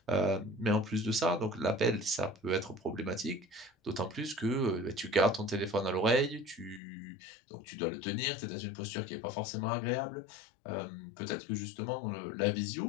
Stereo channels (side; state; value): right; drops out; at 6.8 s